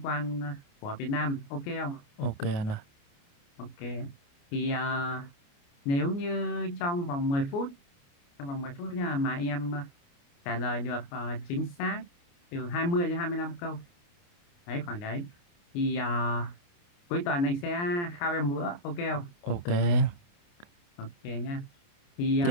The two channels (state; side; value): late; right; 29 ms